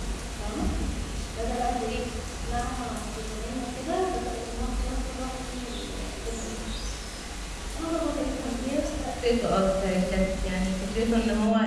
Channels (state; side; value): identical; both; correlation 1.00